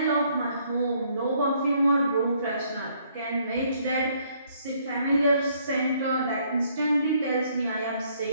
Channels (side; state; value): both; inverted; correlation -0.67